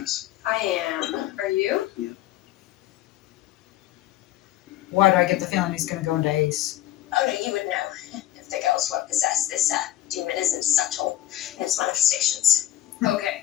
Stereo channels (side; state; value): right; quieter; 13.5 dB